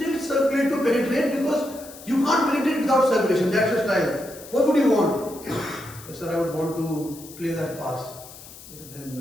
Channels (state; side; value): noise; left; hiss, 17 dB below the sound